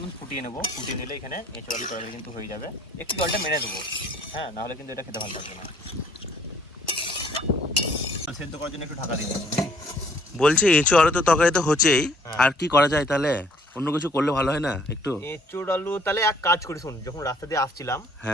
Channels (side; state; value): both; normal; correlation 0.61